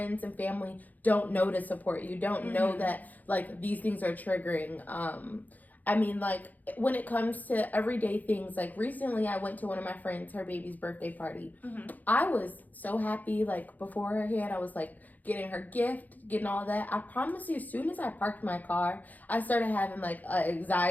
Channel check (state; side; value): late; right; 0.081 ms